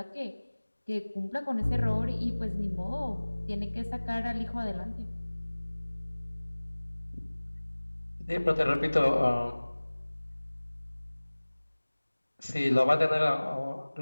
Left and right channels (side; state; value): both; inverted; correlation -1.00